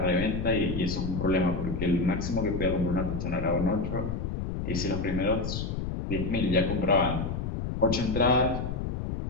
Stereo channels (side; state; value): left; noise; rumble, 3 dB below the sound